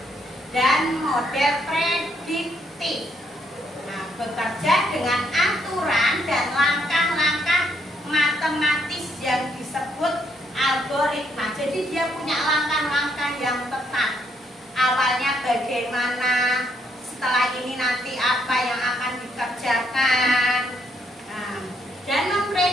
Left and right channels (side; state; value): both; normal; correlation 0.73